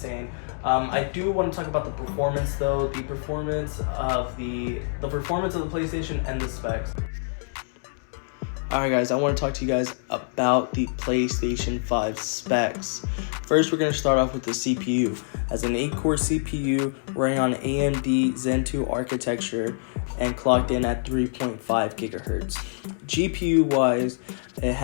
I do want to talk about the performance though. The performance of the PlayStation and the specs. Alright guys, I want to talk to you guys about the PlayStation 5 specs. First, we're going to start off with the CPU. As an 8-core CPU running on AMD Zen 2 architecture and clocked in at 3.5 gigahertz. GPU wise, it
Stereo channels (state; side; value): silent; right; digital silence